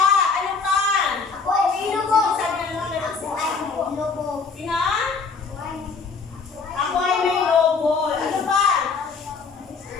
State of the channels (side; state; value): right; quieter; 4.8 dB